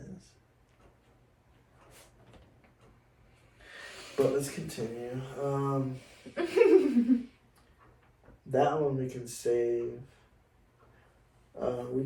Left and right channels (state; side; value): identical; both; correlation 1.00